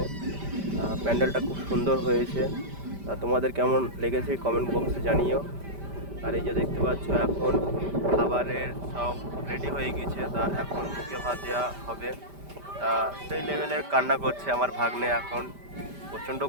প্যান্ডেলটা খুব সুন্দর হয়েছে। তা তোমাদের কেমন লেগেছে কমেন্ট বক্সে জানিও। আর এই যে দেখতে পাচ্ছ এখন খাবারের সব রেডি হয়ে গেছে। তা এখন মুখে ভাত দেওয়া হবে। তা সেই লেভেলের কান্না করছে আমার ভাগ্নে। এখন প্রচণ্ড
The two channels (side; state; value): left; late; 5.1 ms